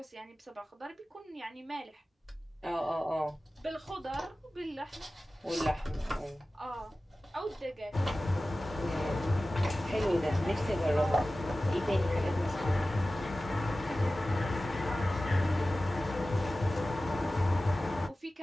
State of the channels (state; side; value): normal; both; correlation 0.96